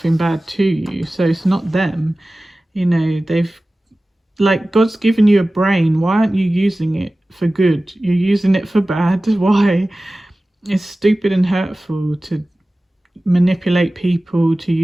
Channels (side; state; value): both; normal; correlation 0.97